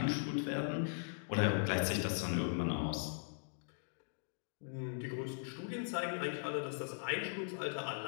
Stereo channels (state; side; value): silent; right; digital silence